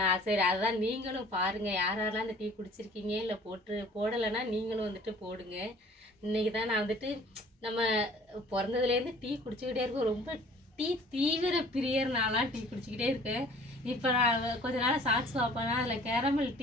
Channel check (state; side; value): normal; both; correlation 0.51